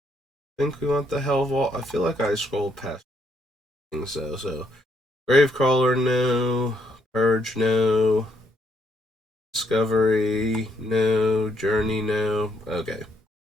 think we want the Hell Vault. I feel like I scrolled past things though. So Gravecrawler, no. Purge, no. Discovery, no. Journey, no. Okay.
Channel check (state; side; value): normal; both; correlation 0.73